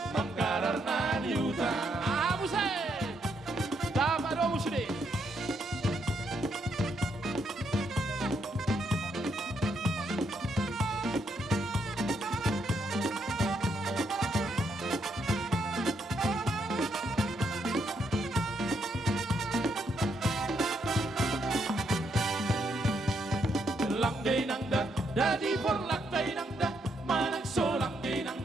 manggarar na niutang. Abusay! Tama daw sini. Langgay nangda, dadi for langgay nangda, manang so langgay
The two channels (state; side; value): normal; both; correlation 0.76